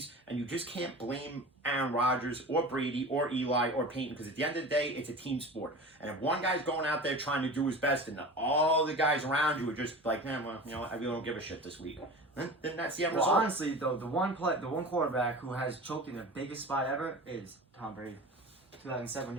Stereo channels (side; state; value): both; normal; correlation 0.34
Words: and you just can't blame Aaron Rodgers or Brady or Eli or Peyton, because at the end of the day, it's a team sport. And if one guy's going out there trying to do his best, and all the guys around you are just like, man, well, you know, I really don't give a shit this week, then that's the end Well, result. honestly, though, the one quarterback who has choked in the biggest spot ever is Tom Brady. 2007,